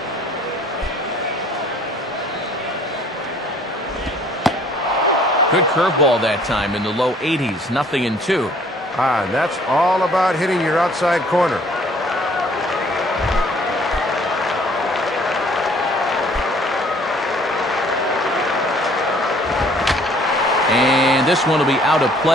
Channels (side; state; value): both; normal; correlation 0.58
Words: Good curveball that time in the low 80s. 0-2. And that's all about hitting your outside corner. And this one will be out of